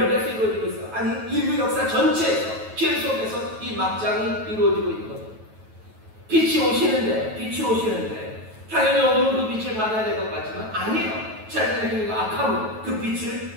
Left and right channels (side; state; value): left; late; 9.2 ms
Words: 이루어지고 있어요. 아니 인류 역사 전체에서 길 속에서 이 막장이 이루어지고 있는 거예요. 빛이 오시는데 당연히 어두운 그 빛을 받아야 될 것 같지만 아니에요. 자신의 악함은 그